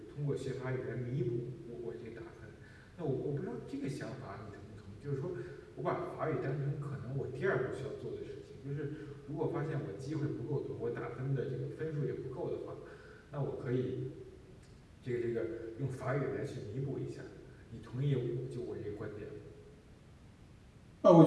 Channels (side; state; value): both; identical; correlation 1.00